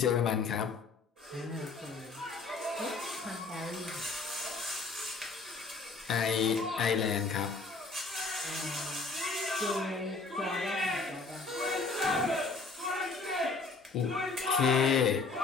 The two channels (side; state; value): right; quieter; 4.1 dB